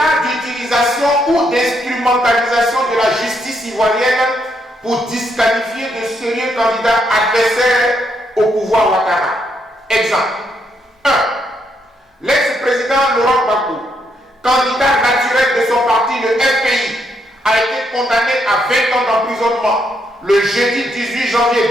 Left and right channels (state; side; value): normal; both; correlation 0.76